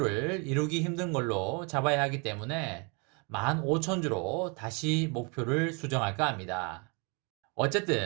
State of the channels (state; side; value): quieter; left; 32.9 dB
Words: 이루기 힘든 걸로 잡아야 하기 때문에 15,000주로 다시 목표를 수정할까 합니다.